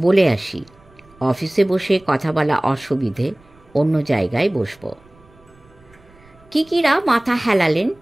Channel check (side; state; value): right; noise; rumble, 28 dB below the sound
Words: আসি। অফিসে বসে কথা বলা অসুবিধে, অন্য জায়গায় বসব। কিকিরা মাথা হেলালেন।